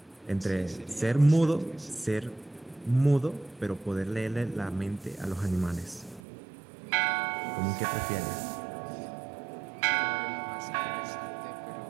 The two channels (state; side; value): drops out; left; at 6.2 s